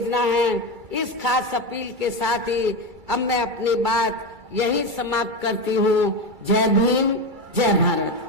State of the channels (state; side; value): late; left; 2.3 ms